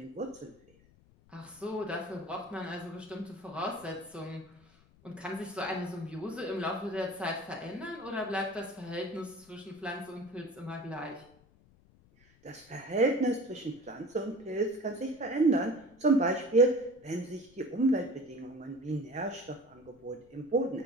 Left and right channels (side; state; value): left; noise; rumble, 28 dB below the sound